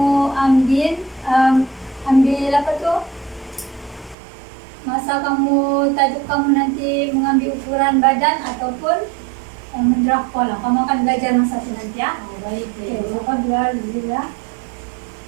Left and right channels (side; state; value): left; drops out; at 4.2 s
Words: ambil apa tuh, masa kamu tajuk kamu nanti mengambil ukuran badan ataupun mendraft pola. Kamu akan belajar masa itu nanti ya. Oh, baik, Oke, Cikgu. siapa dulu ya.